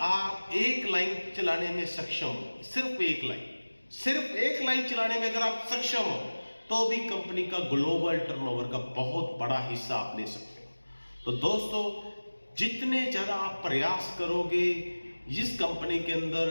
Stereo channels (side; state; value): both; inverted; correlation -1.00